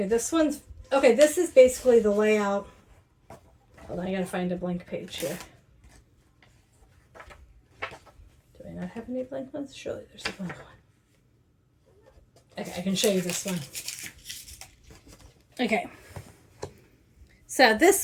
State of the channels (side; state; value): both; identical; correlation 1.00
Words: this is basically the layout. Hold on, I gotta find a blank page here. Do I not have any blank ones? Surely there's a blank one. Okay, I can show you this one. Okay. So